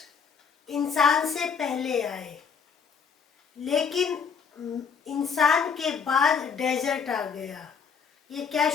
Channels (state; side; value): quieter; right; 6.3 dB